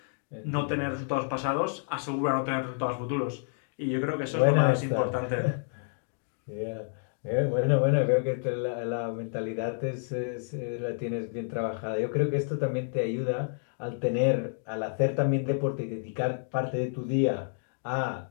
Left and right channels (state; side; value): silent; right; digital silence